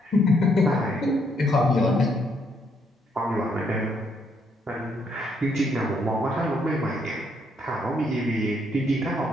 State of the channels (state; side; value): normal; both; correlation 0.72